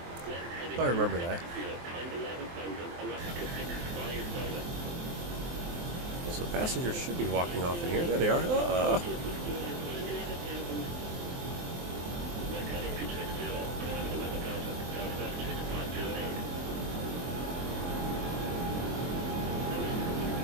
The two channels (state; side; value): late; left; 23 ms